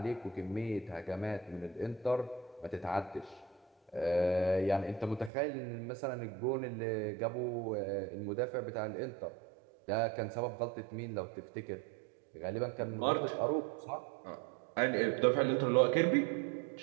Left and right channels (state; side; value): drops out; left; at 5.3 s